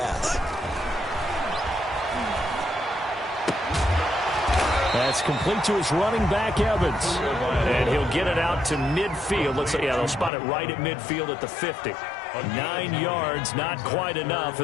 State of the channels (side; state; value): right; drops out; at 10.3 s